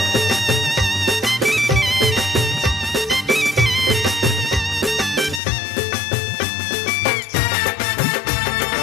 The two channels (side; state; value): right; drops out; at 5.4 s